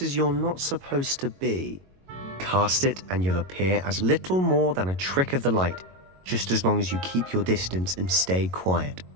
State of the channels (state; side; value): late; left; 22 ms